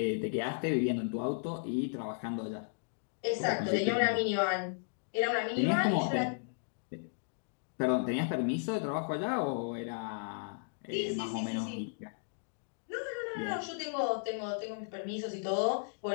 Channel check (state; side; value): silent; right; digital silence